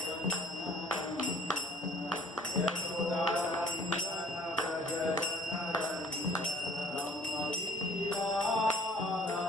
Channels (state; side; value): normal; both; correlation 0.55